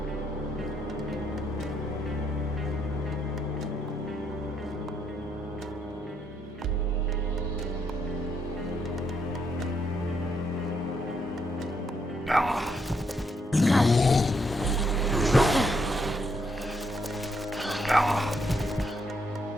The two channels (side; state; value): both; normal; correlation 0.76